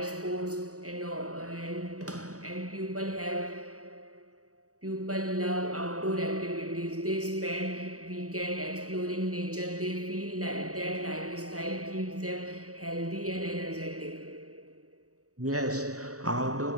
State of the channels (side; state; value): left; late; 0.66 ms